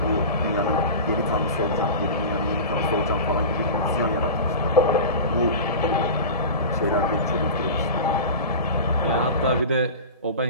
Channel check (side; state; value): both; inverted; correlation -0.30